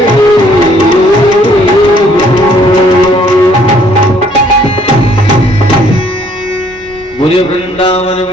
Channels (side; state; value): both; normal; correlation 0.62